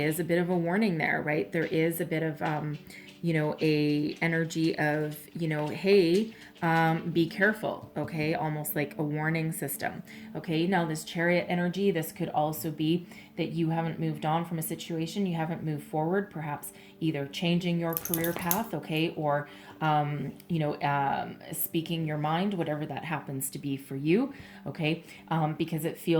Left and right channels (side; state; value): both; identical; correlation 1.00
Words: a bit of a warning there, right? There is a bit of, a energy of, hey, be careful, okay? Almost like a warning system, okay? Now, this Chariot energy, this could also be that you haven't moved on from a situation, you haven't moved forward, perhaps either changing your career path, okay, or speaking your mind, whatever that happens to be for you, okay, because it